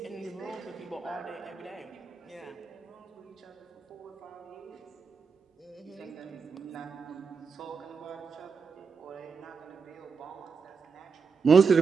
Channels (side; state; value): left; quieter; 5.4 dB